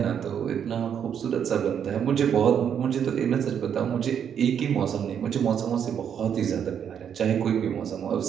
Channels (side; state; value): left; quieter; 8.3 dB